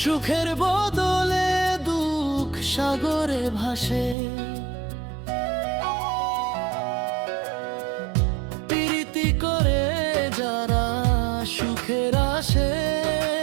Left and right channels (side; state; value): left; drops out; at 4.2 s